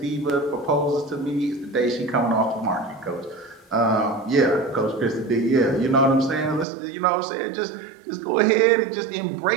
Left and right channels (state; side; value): drops out; left; at 6.7 s